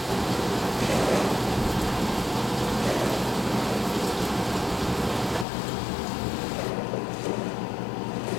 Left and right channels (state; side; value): drops out; right; at 5.5 s